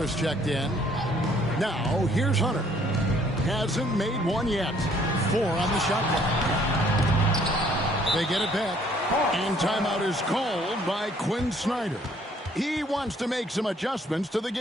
checked in. Now, here's Hunter. Hasn't made one yet. 4 on the shot clock. They get it back. And timeout is called by Quinn Snyder. He wants to make some adjustments to the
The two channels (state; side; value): normal; both; correlation 0.62